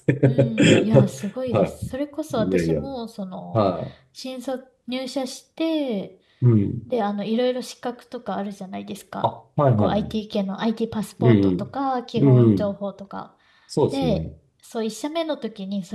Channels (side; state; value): both; identical; correlation 1.00